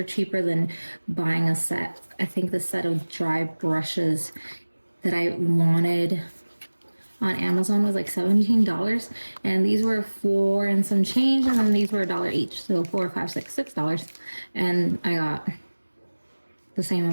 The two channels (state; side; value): inverted; both; correlation -1.00